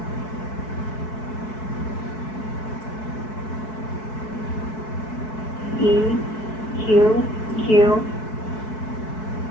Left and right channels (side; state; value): right; late; 4.6 ms